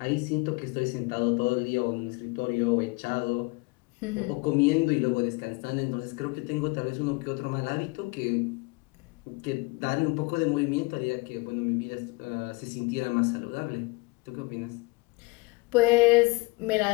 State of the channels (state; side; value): quieter; right; 25.6 dB